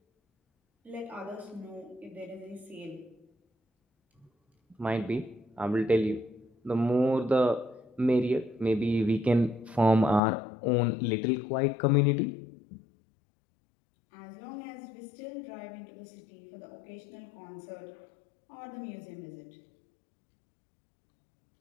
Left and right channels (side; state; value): right; drops out; at 10.2 s